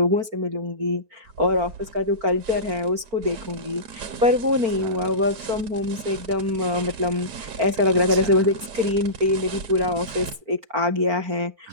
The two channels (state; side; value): late; left; 4.4 ms